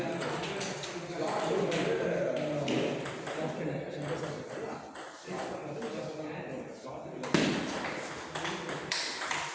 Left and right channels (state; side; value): identical; both; correlation 1.00